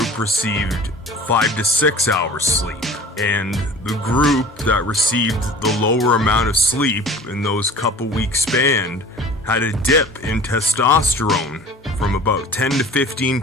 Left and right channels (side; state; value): both; normal; correlation 0.42